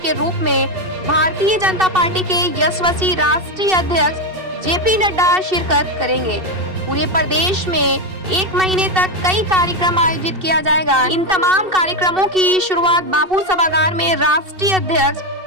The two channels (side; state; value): left; late; 2.7 ms